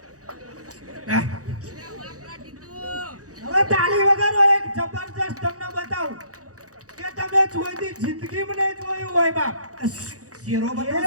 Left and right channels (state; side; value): late; left; 0.66 ms